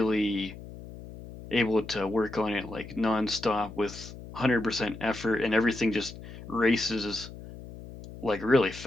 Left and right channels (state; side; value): noise; left; hum, 14 dB below the sound